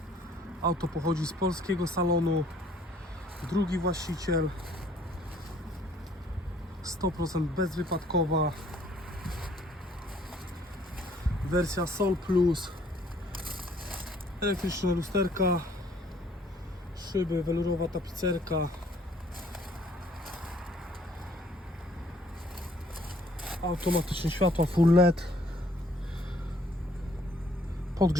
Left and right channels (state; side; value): normal; both; correlation 0.61